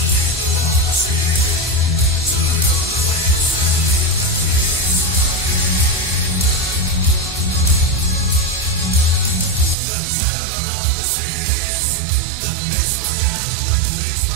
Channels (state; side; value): drops out; left; at 9.8 s